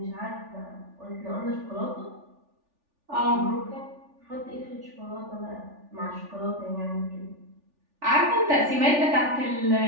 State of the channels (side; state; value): left; late; 3.4 ms